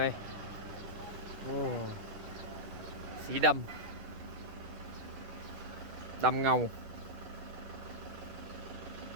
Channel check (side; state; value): left; late; 10 ms